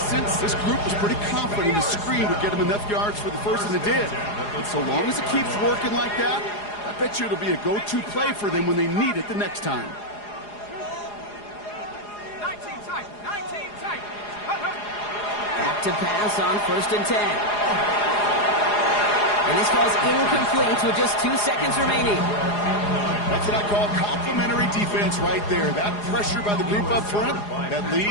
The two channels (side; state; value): right; late; 4.8 ms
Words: this group was pretty confident the screen would get him enough yards for the first, and it did. And so long as it keeps working like that, I bet you it'll be a go-to play for them when they need it the next time. 19 tight. 19 tight. Back to pass on 1st and 10. And this falls incomplete with just 2 seconds remaining. That's what I call complimentary defense right there. That pressure by the group up front, that